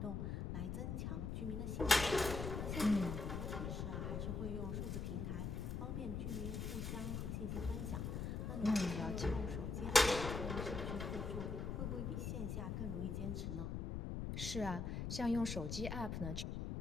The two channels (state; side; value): noise; left; rumble, 2 dB below the sound